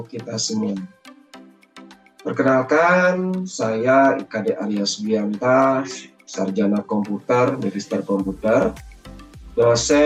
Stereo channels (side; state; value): both; identical; correlation 1.00